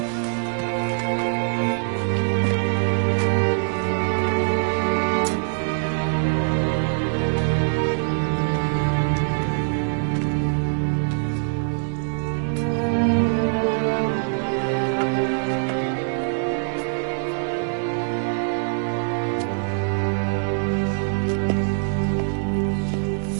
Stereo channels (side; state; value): left; silent; 63 dB below the other